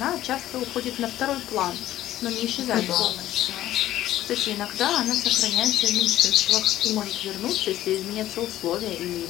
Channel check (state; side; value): quieter; right; 13.6 dB